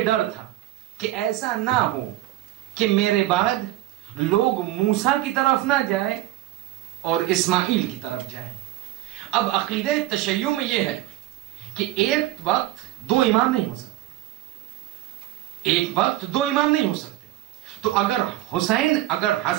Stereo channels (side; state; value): left; quieter; 15.4 dB